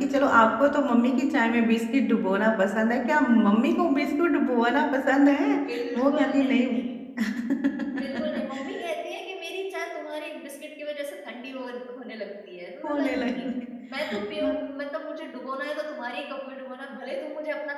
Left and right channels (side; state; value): both; identical; correlation 1.00